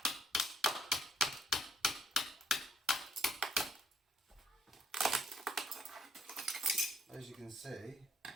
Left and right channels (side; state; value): both; normal; correlation 0.67